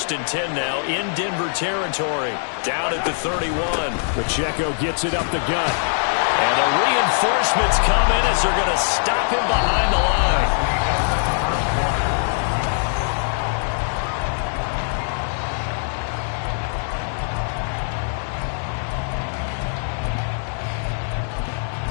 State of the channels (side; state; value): right; silent; digital silence